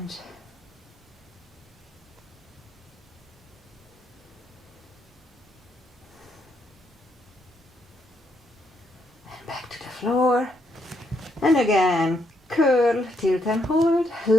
And back to the floor. And again, curl, tilt and hold.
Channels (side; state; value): both; normal; correlation 0.75